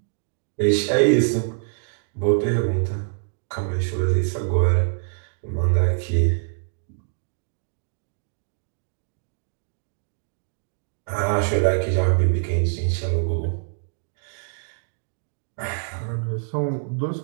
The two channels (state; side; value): silent; left; digital silence